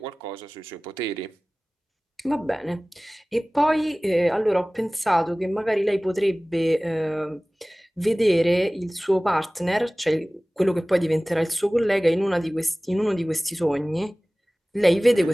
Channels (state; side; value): normal; both; correlation 0.98